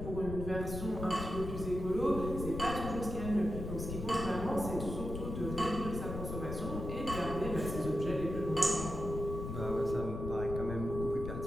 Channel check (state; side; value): noise; left; rumble, 6 dB below the sound